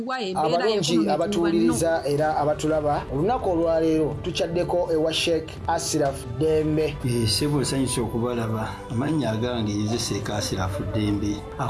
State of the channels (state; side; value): identical; both; correlation 1.00